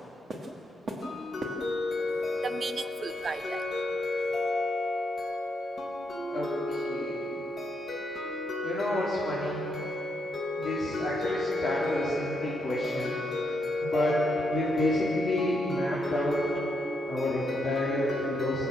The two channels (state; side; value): normal; both; correlation 0.78